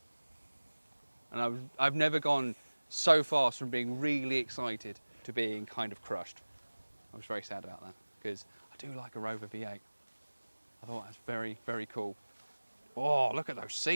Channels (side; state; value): both; inverted; correlation -1.00